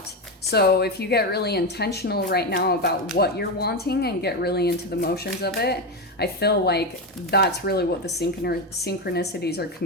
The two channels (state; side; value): normal; both; correlation 0.13